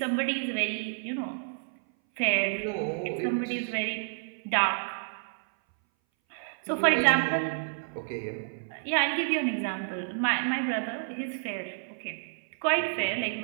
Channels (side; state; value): left; silent; 58 dB below the other